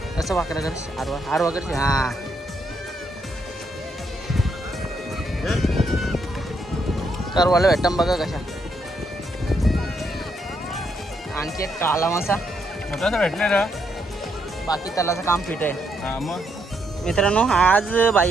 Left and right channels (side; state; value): both; normal; correlation 0.76